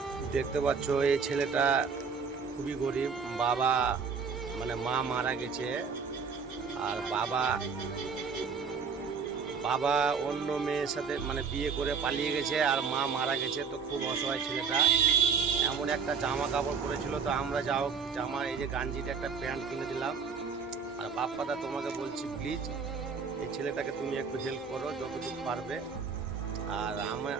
দেখতে পাচ্ছ এই ছেলেটা খুবই গরিব। বাবা মানে মা মারা গেছে, আর বাবা বাবা অন্য মেয়ের সাথে মানে বিয়ে করে পালিয়ে গেছে, আর মা মারা গেছে। তো খুব অসহায় ছেলেটা। এমন একটা জামা কাপড় পরেছিল, তো আমরা যাও জামা এই যে গাঞ্জিটা একটা প্যান্ট কিনে দিলাম। আর বাপ্পাদা তোমাকে বলছি, প্লিজ এই ছেলেটাকে তুমি একটু হেল্প করো যতটুকু পারবে। আর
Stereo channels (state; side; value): quieter; left; 5.7 dB